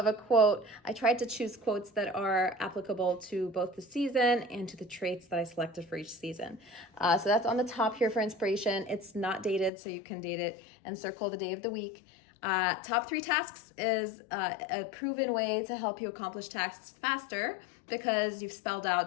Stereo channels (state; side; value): drops out; right; at 9.7 s